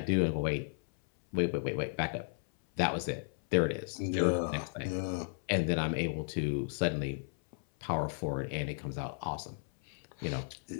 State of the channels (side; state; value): right; silent; 55 dB below the other